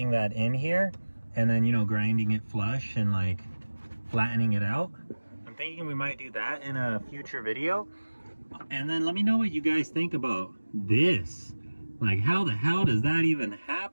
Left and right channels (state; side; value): inverted; both; correlation -1.00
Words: that in here, and then, you know, grinding it flush and like flattening it out. I'm thinking we might do that in a future video. And then let me know what you guys think about this. Like, how the hell does that even